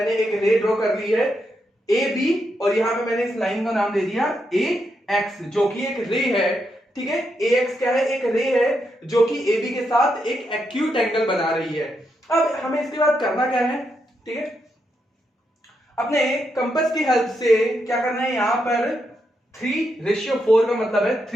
एक रे ड्रॉ कर ली है ए बी, और यहां पे मैंने इस लाइन का नाम दे दिया ए एक्स, जो कि एक रे है। ठीक है, ए एक्स क्या है, एक रे है जो कि ए बी के साथ एक एक्यूट एंगल बना रही है। अब हमें इसके बाद करना क्या है, ठीक है, अपने कंपास की हेल्प से क्या करना है, यहां पर 3:4 का मतलब है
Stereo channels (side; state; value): both; normal; correlation 0.82